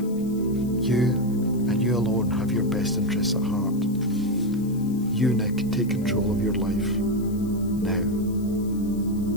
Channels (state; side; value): noise; left; hiss, 23 dB below the sound